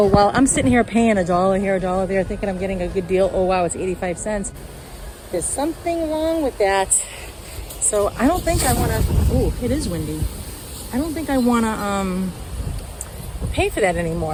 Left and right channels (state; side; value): identical; both; correlation 1.00